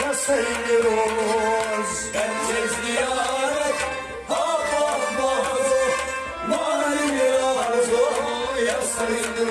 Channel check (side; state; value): both; identical; correlation 1.00